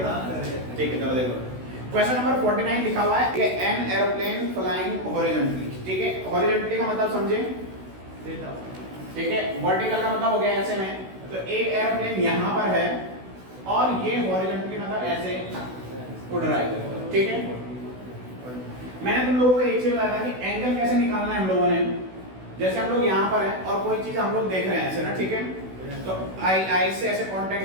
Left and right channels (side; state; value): left; late; 16 ms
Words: था, ठीक है। चलो देखो क्वेश्चन नंबर 49 लिखा हुआ है, एन एरोप्लेन फ्लाइंग हॉरिजॉन्टली, ठीक है। हॉरिजॉन्टली का मतलब समझे, ठीक है। वर्टिकल का मतलब हो गया ऐसे में, तो एक एरोप्लेन यहां पर है और ये हॉरिजॉन्टली मतलब ऐसे उड़ रहा है, ठीक है। मैंने तुम लोगों को एक चीज बताया था कि एंगल कैसे निकालना है हम लोगों ने। जैसे हम लोग यहाँ पर हैं और कोई चीज हम लोग देख रहे हैं ऐसे ना, ठीक है, तो आई से ऐसे